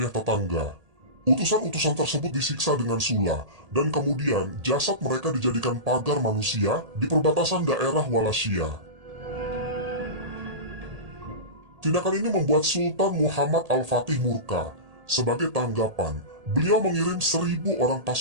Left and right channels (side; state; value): left; late; 1.8 ms